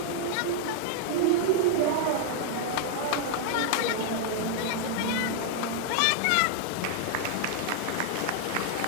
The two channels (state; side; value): different; both; correlation 0.00